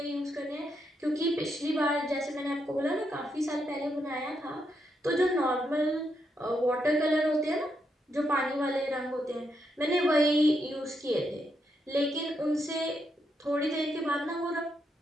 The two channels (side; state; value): both; normal; correlation 0.80